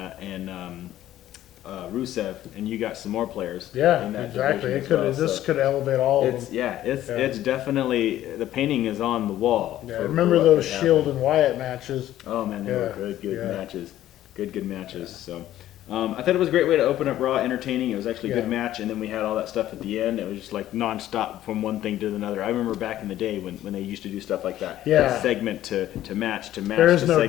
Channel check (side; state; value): right; quieter; 13.2 dB